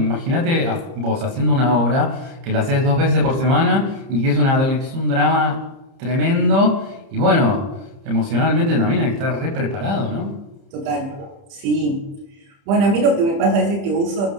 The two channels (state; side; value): late; left; 30 ms